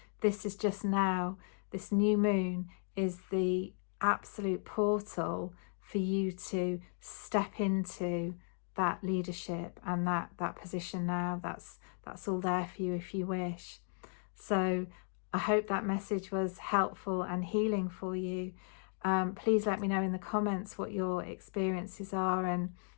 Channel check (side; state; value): right; silent; 54 dB below the other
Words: this is just now, this new moon is the absolute portal for you to step into that leadership and that position now. That's all there for you if you wish. So I hope that message was helpful and healing for you. Please let me know in the comments what your experiences are and